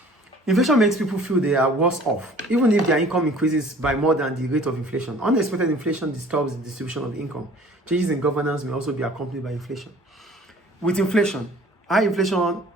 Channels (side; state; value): both; normal; correlation 0.50